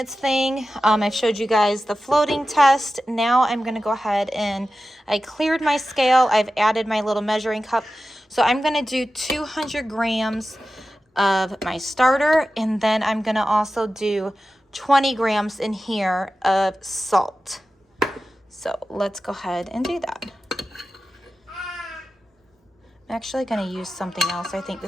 thing, I've showed you guys the floating test. Now I'm gonna go ahead and I cleared my scale. I've added my little measuring cup. So I'm gonna do 200 grams of my starter, and then I'm gonna also do 20 grams in here of salt. So let's go ahead and do that. I'm actually gonna use something else, I think, to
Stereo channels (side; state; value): both; normal; correlation 0.94